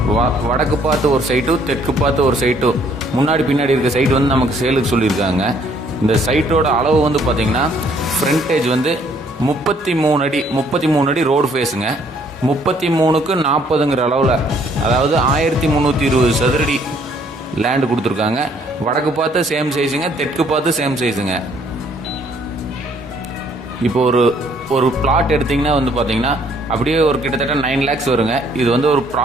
வடக்கு பார்த்து ஒரு சைட்டும் தெற்கு பார்த்து ஒரு சைட்டும் முன்னாடி பின்னாடி இருக்க சைட்டு வந்து நமக்கு சேலுக்கு சொல்லியிருக்காங்க. இந்த சைட்டோட அளவு வந்து பார்த்தீங்கன்னா ஃப்ரண்டேஜ் வந்து 33 அடி ரோடு ஃபேஸுங்க. 33க்கு 40ங்கிற அளவில், அதாவது 1320 சதுரடி லேண்டு கொடுத்துருக்காங்க. வடக்கு பார்த்து சேம் சைஸுங்க, தெற்கு பார்த்து சேம் சைஸுங்க. இப்போ ஒரு பிளாட் எடுத்திங்கன்னா வந்து பார்த்தீங்கன்னா அப்படியே ஒரு கிட்டத்தட்ட 9 lakhs வருங்க. இது வந்து ஒரு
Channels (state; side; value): normal; both; correlation 0.64